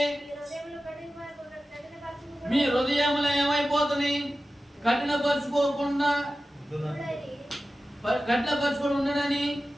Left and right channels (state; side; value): normal; both; correlation 0.95